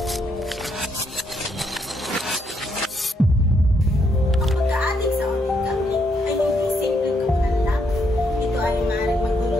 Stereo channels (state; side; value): normal; both; correlation 0.75